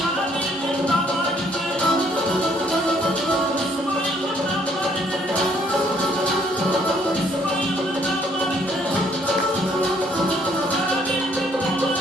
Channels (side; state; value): both; normal; correlation 0.65